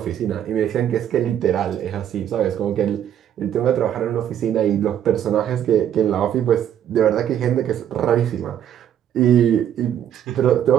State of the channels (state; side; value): quieter; left; 10.1 dB